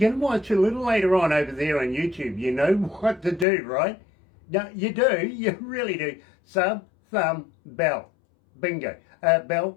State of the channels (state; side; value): drops out; right; at 3.5 s